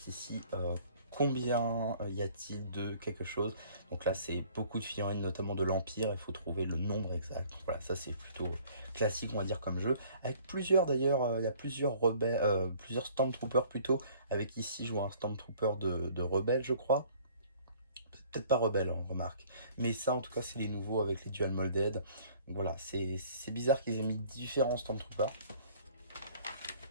ici, combien y a-t-il de quelque chose. Donc là c'est beaucoup de figurines, notamment de l'Empire, il faut trouver le nombre exact. Donc voilà, ça c'est plutôt classique on va dire comme jeu. Avec plusieurs d'ailleurs, il y a plusieurs rebelles, plusieurs Stormtroopers plutôt. Avec ici je vois un Stormtrooper de rebelle je crois. Peut-être pas rebelle on remarque. Mais ça en tout cas c'est les nouveaux avec les dual molded. Donc voilà, c'est bizarre qu'ils aient mis différents Stormtroopers.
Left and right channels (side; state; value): both; inverted; correlation -0.55